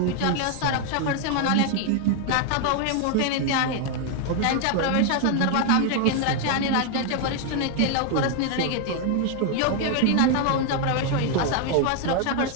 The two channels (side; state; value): both; different; correlation 0.01